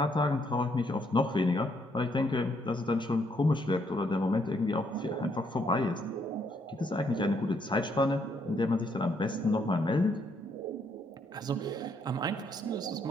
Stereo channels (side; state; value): both; normal; correlation 0.72